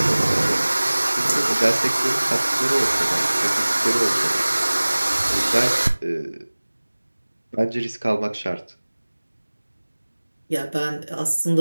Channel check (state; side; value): inverted; both; correlation -1.00